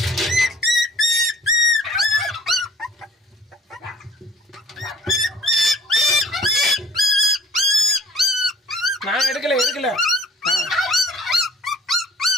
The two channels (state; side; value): normal; both; correlation 0.52